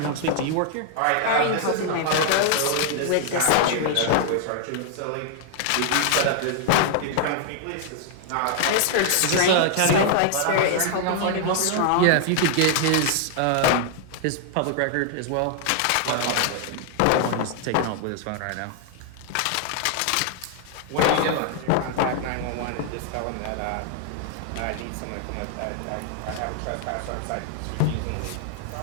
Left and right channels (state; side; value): different; both; correlation 0.00